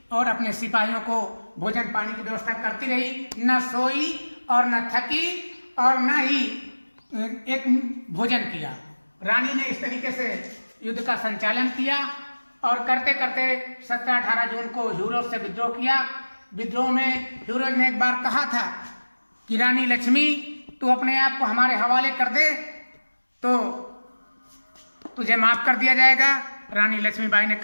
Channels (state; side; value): inverted; both; correlation -1.00